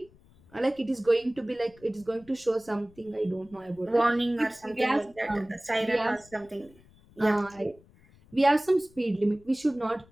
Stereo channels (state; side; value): noise; left; rumble, 27 dB below the sound